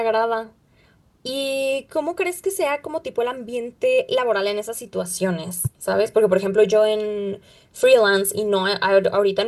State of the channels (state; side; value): identical; both; correlation 1.00